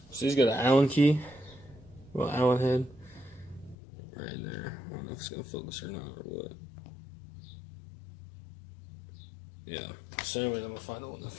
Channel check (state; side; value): drops out; right; at 3.8 s